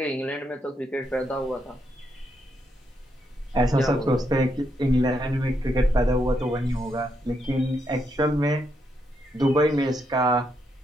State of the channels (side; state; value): both; normal; correlation 0.79